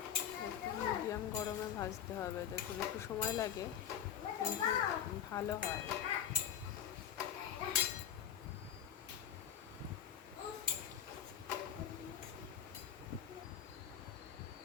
মিডিয়াম গরমে ভাজতে হবে, দেখুন একটু সময় লাগে কিন্তু ভালো হয়।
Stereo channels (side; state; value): right; quieter; 9.1 dB